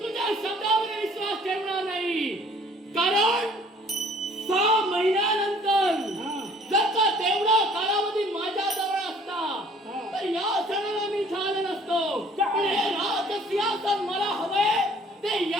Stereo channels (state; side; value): normal; both; correlation 0.55